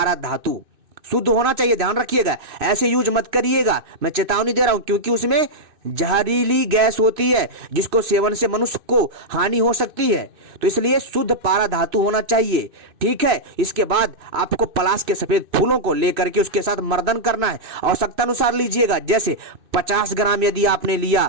धातु, शुद्ध होना चाहिए, ध्यान रखिएगा, ऐसे यूज मत करिएगा, मैं चेतावनी दे रहा हूं, क्योंकि उसमें जहरीली गैस होती है जिसको सेवन से मनुष्य को हानि हो सकती है। तो इसलिए शुद्ध पारा धातु होना चाहिए, ठीक है। इसके बाद आपको पलाश के सफेद फूलों को लेकर के उसके साथ मर्दन करना है, आवश्यकता अनुसार लीजिएगा, जैसे 50 ग्राम यदि आपने लिया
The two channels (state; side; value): late; left; 2.6 ms